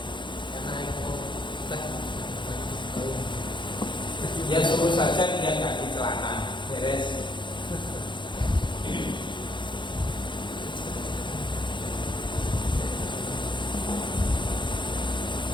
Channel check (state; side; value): late; right; 0.23 ms